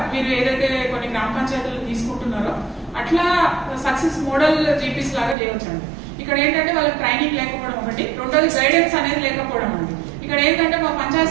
మీరు ఏదైతే కొన్ని గ్రామ పంచాయతీలు తీసుకుంటున్నారో అట్లా సక్సెస్ మోడల్ జీపీస్ లాగా చేయవచ్చండి. ఇక్కడ ఏంటంటే వాళ్ళకి ట్రైనింగ్ లేకపోవడం ఒకటి, రెండోది గైడెన్స్ అనేది లేకపోవడం అండి. ఇక్కడ ఏంటంటే మా పంచాయత్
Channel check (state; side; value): drops out; left; at 5.4 s